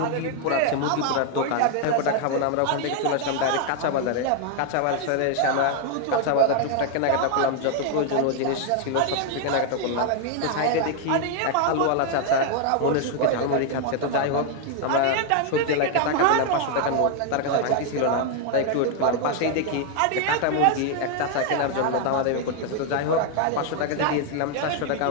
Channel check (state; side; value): different; both; correlation 0.00